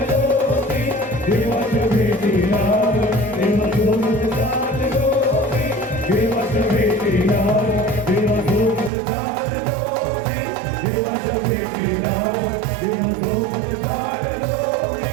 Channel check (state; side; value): drops out; left; at 8.9 s